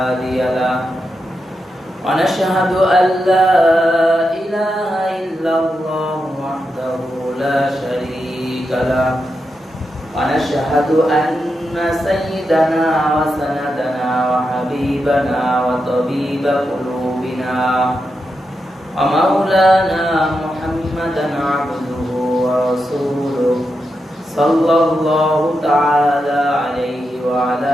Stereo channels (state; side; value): normal; both; correlation 0.87